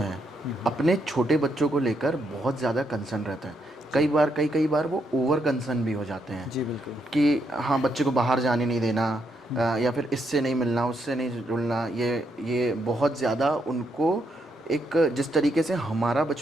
अपने छोटे बच्चों को लेकर बहुत ज़्यादा कंसर्न रहते हैं। कई बार वो ओवर कंसर्न भी हो जाते हैं। जी बिल्कुल। कि हाँ, बच्चे को बाहर जाने नहीं देना, या फिर इससे नहीं मिलना, उससे नहीं जुड़ना, ये बहुत ज़्यादा उनको एक, जिस तरीके से हमारा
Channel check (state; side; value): normal; both; correlation 0.78